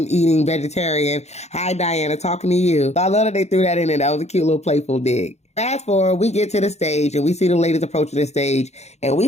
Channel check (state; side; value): late; right; 0.32 ms